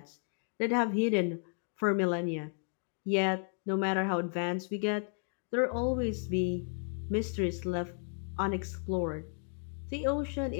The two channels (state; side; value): silent; right; 55 dB below the other